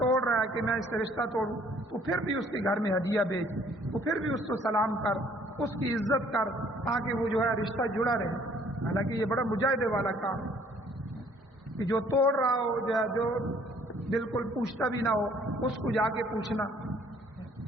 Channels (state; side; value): normal; both; correlation 0.60